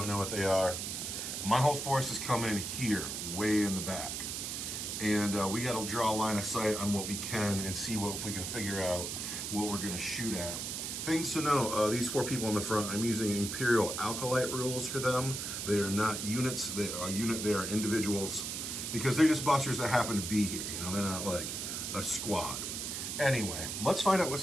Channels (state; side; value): noise; right; hiss, 4 dB below the sound